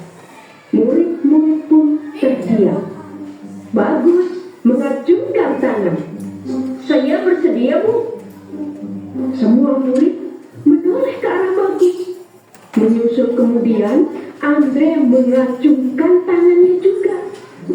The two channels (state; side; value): identical; both; correlation 1.00